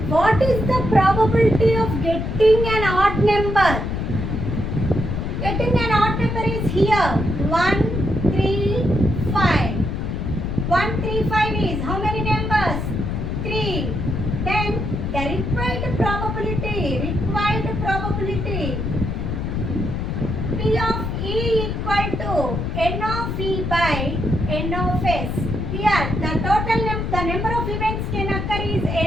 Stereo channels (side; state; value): left; noise; rumble, 2 dB below the sound